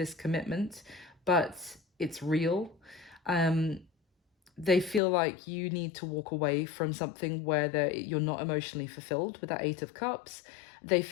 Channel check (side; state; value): right; drops out; at 5.0 s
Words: commitment, but it's real. They feel like you need to walk away from something where you're not emotionally fulfilled with that Eight of Cups. They